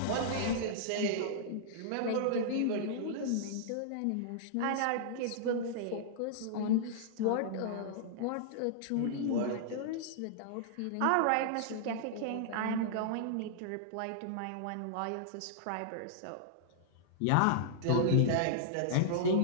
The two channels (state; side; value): different; both; correlation -0.01